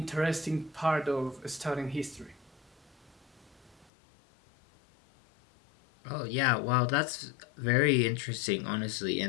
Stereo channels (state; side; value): drops out; right; at 3.9 s